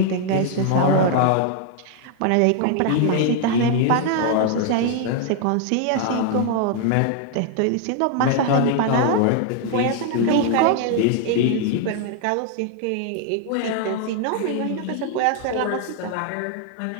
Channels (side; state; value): both; different; correlation 0.00